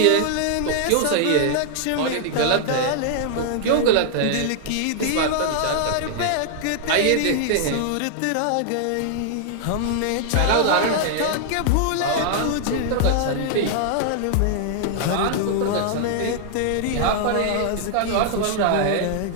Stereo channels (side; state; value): both; different; correlation -0.01